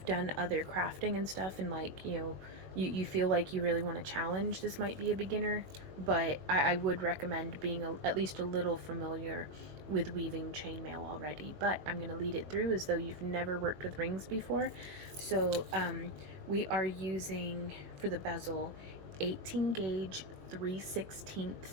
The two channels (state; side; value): late; left; 21 ms